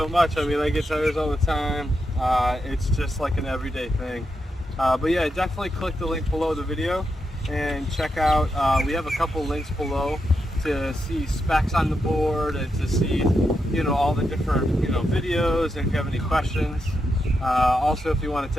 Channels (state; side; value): normal; both; correlation 0.85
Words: much. I mean, I get tires all the time. It's just like an everyday thing. But yeah, definitely click the link below the video and check out, we have a couple links below to see specs on the board and to see, you know, all the different, you know, videos, and if you have any questions. Also, if you want to